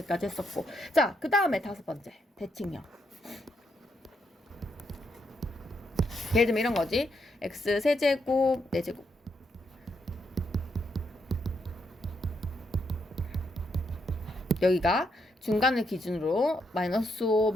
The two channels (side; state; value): both; normal; correlation 0.78